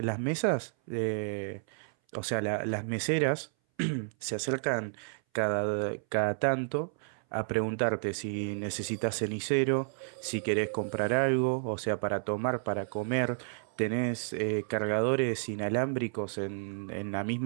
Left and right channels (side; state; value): left; silent; 57 dB below the other